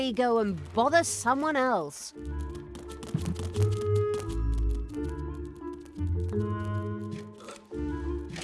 go and bother someone else.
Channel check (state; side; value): identical; both; correlation 1.00